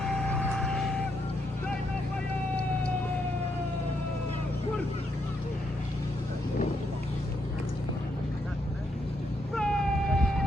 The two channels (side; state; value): both; normal; correlation 0.78